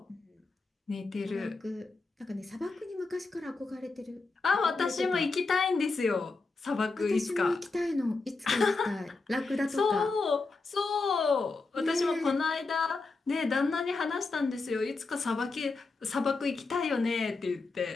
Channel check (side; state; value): right; quieter; 3.8 dB